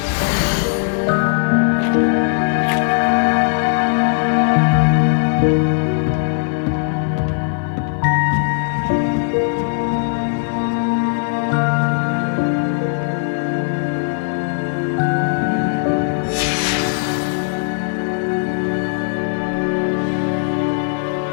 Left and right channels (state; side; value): silent; right; 66 dB below the other